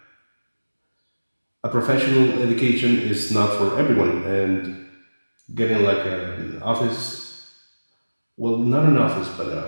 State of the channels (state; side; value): inverted; both; correlation -1.00